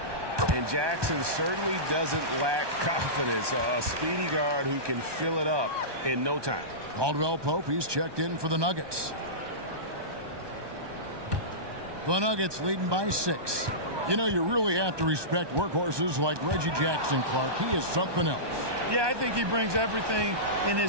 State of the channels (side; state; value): left; late; 1.2 ms